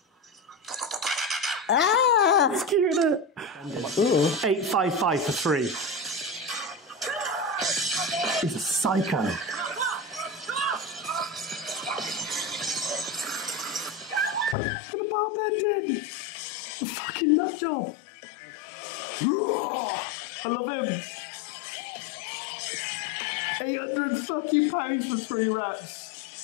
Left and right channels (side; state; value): right; drops out; at 14.6 s